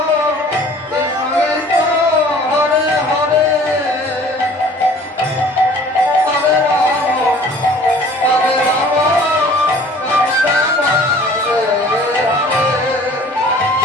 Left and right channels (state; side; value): normal; both; correlation 0.50